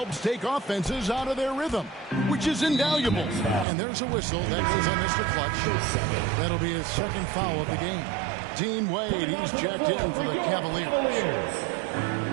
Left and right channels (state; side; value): drops out; left; at 3.7 s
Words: take offenses out of their rhythm, which is invaluable. And there's a whistle that goes on Mr. Clutch. That'll be his second foul of the game. Dean Wade, he's checked in for the Cavaliers.